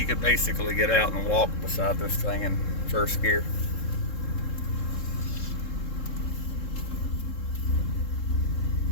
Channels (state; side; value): late; right; 3.7 ms